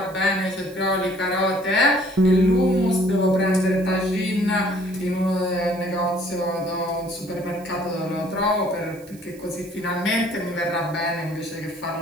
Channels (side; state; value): right; noise; hiss, 24 dB below the sound